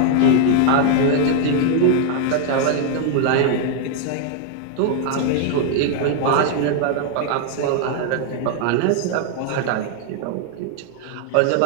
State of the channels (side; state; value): both; different; correlation 0.00